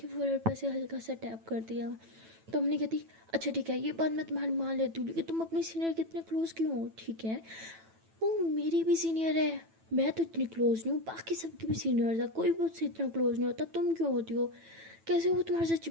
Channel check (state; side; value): late; left; 9.1 ms